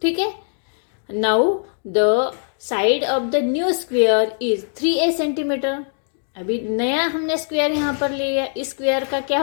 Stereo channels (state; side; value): silent; right; digital silence